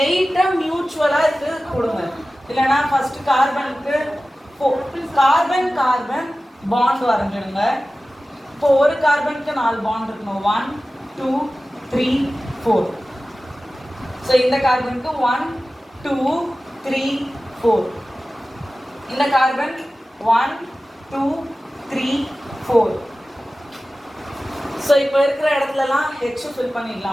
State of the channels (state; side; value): normal; both; correlation 0.96